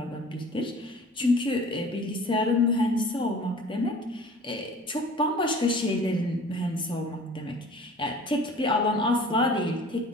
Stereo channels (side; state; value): both; normal; correlation 0.45